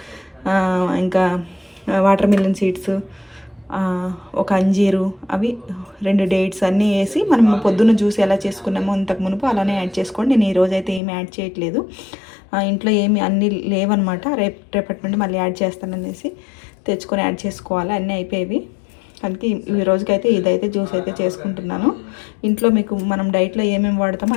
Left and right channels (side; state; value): right; drops out; at 11.0 s